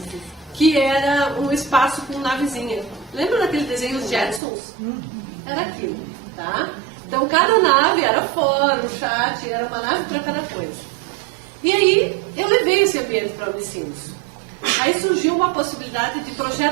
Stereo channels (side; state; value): left; drops out; at 4.4 s